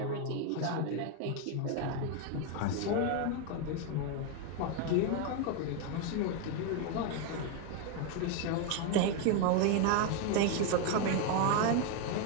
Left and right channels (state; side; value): different; both; correlation 0.01